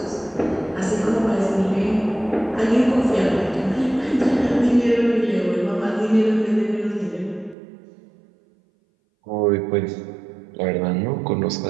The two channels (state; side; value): drops out; left; at 7.6 s